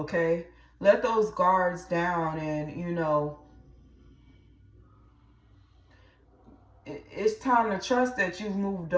Let those guards down, and, it's time to trust that you've moved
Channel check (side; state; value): both; identical; correlation 1.00